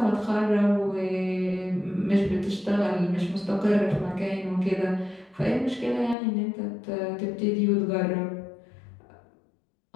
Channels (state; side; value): drops out; right; at 6.2 s